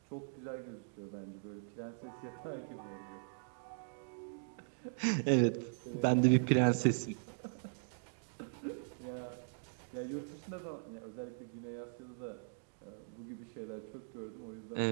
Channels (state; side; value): silent; left; digital silence